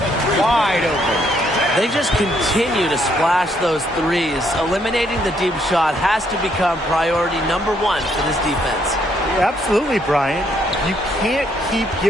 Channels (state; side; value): normal; both; correlation 0.71